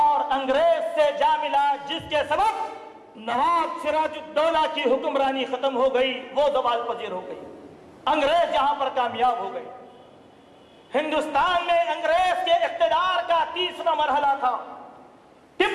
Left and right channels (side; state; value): both; identical; correlation 1.00